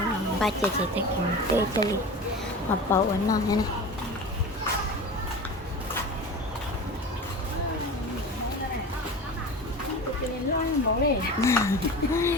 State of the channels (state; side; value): normal; both; correlation 0.33